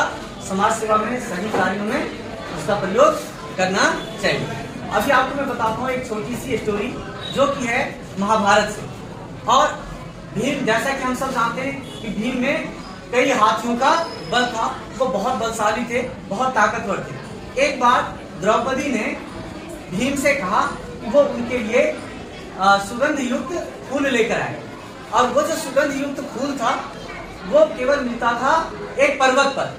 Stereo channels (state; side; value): identical; both; correlation 1.00